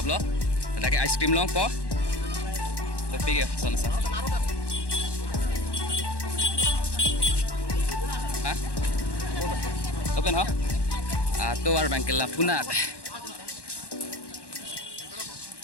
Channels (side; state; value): right; late; 1.1 ms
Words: लो ताकि आइसक्रीम लो पो तो पी गया सोना सा हाँ open हो तो वार बैंक के लापुनात